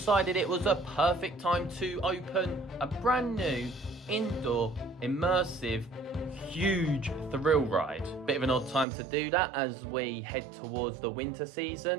it was a perfect time to open a brand new indoor immersive huge thrill ride. Bit of an odd time to do that as we head towards the winter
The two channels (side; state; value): left; drops out; at 8.8 s